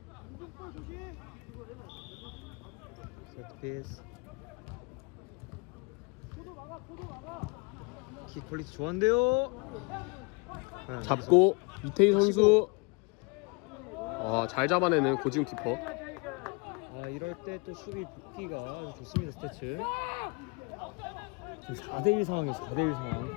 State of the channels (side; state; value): right; quieter; 30.6 dB